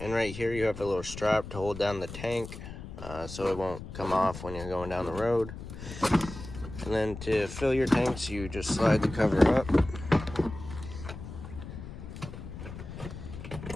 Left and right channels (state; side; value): noise; left; rumble, 11 dB below the sound